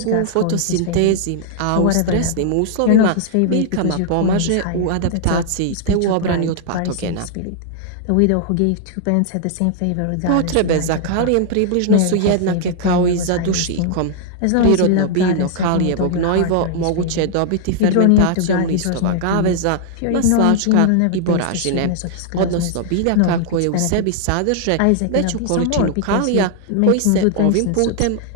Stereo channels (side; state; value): both; different; correlation -0.01